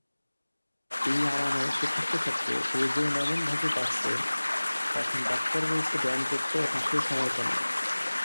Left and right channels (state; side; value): inverted; both; correlation -1.00